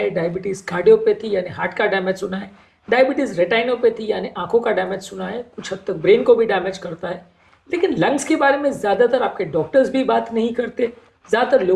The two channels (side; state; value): both; identical; correlation 1.00